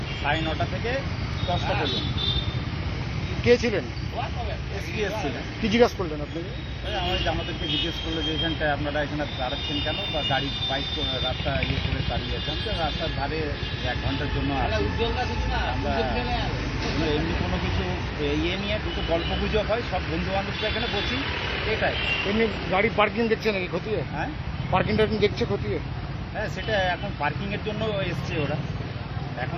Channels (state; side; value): identical; both; correlation 1.00